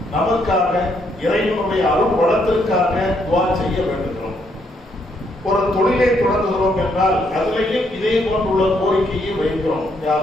நமக்காக இறைவனுடைய அருள் வளத்திற்காக துஆ செய்ய வேண்டுகிறோம். ஒரு தொழிலை தொடங்குகிறோம் என்றால் அதிலேயும் இதே போன்றுள்ள கோரிக்கையை வைக்கிறோம். யா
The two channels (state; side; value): normal; both; correlation 0.73